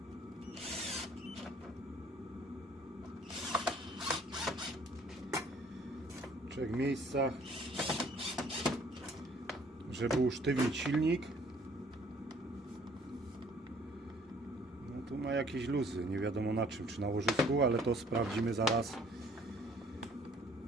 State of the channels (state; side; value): normal; both; correlation 0.58